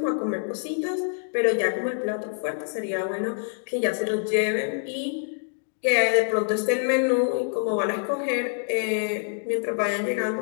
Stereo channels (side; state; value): right; silent; digital silence